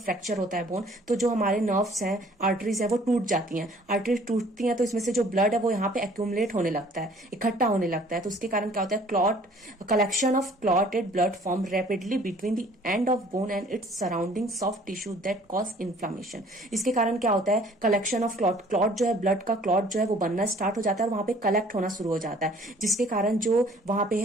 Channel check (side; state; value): both; normal; correlation 0.55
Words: होता है बोन, तो जो हमारे नर्व्स हैं, आर्टरीज है, वो टूट जाती हैं। आर्टरीज टूटती हैं तो इसमें से जो ब्लड है वो यहाँ पे एक्यूमुलेट होने लगता है, इकट्ठा होने लगता है। तो उसके कारण क्या होता है? Clot collection of clotted blood form rapidly between the end of bone and its surrounding soft tissue that cause inflammation. इसके कारण क्या होता है? कलेक्शन ऑफ क्लॉट जो है, ब्लड का क्लॉट जो है वो बनना स्टार्ट हो जाता है और वहां पे कलेक्ट होना शुरू हो जाता है, जिसके कारण जो वहां पे